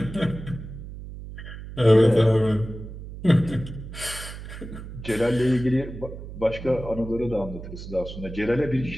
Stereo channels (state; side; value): noise; right; hum, 11 dB below the sound